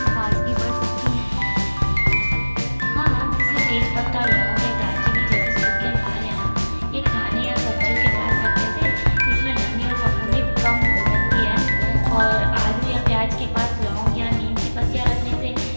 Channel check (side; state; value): both; inverted; correlation -1.00